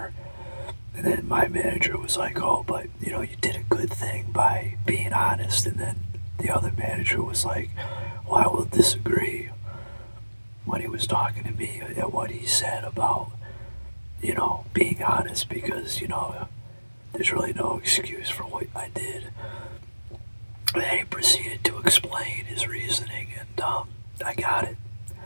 manager was like, oh, but you did a good thing by being honest. And then the other manager was like, well, I will disagree when he was talking to me at what he said about, being honest because, there's really no excuse for what I did. And he proceeded to explain his reasoning, and I got it.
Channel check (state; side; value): inverted; both; correlation -1.00